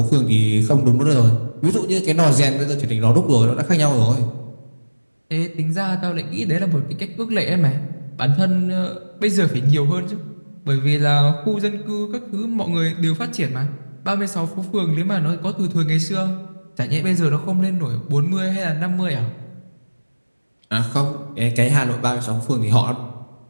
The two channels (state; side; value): inverted; both; correlation -1.00